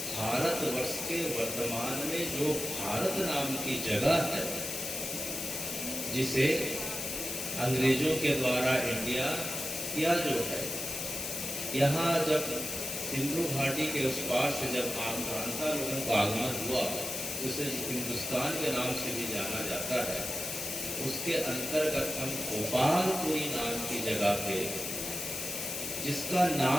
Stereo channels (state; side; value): noise; left; hiss, 4 dB below the sound